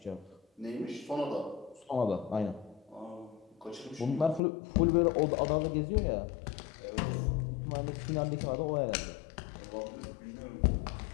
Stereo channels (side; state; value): right; drops out; at 4.4 s